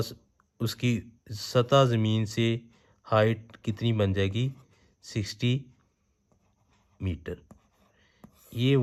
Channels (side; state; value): both; identical; correlation 1.00